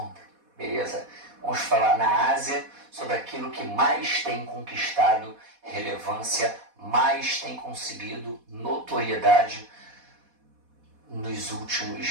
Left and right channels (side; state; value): left; late; 4.1 ms